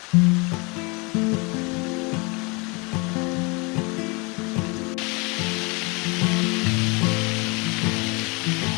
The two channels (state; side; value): quieter; right; 28.9 dB